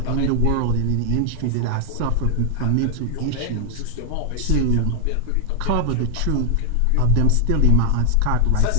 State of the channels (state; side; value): different; both; correlation 0.00